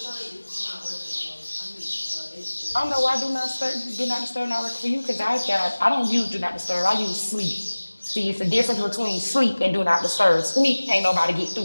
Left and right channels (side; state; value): both; inverted; correlation -1.00